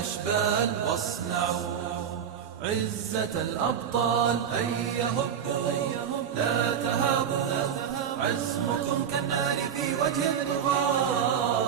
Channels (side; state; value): left; quieter; 8.2 dB